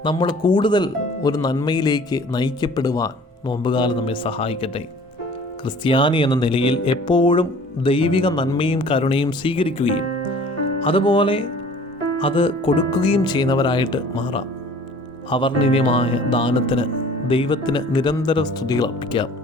നമ്മൾ കൂടുതൽ ഒരു നന്മയിലേക്ക് നയിക്കപ്പെടുവാൻ നോമ്പുകാലം നമ്മെ സഹായിക്കട്ടെ. ക്രിസ്ത്യാനി എന്ന നിലയിൽ എപ്പോഴും ദൈവിക നന്മയും കരുണയും സ്വീകരിക്കുകയും അതുപോലെ അത് കൊടുക്കുകയും ചെയ്യുന്നവരായിട്ട് മാറാം. അവർണ്ണനീയമായ ദാനത്തിന് ദൈവത്തിന് നിരന്തരം സ്തുതികൾ അർപ്പിക്കാം.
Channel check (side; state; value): both; normal; correlation 0.49